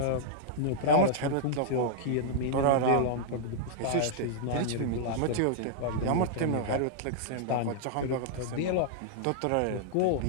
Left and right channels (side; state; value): both; different; correlation -0.02